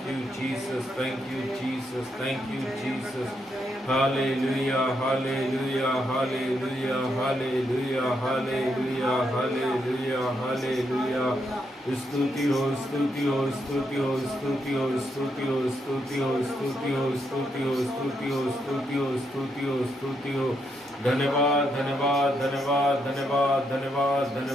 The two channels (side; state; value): both; normal; correlation 0.79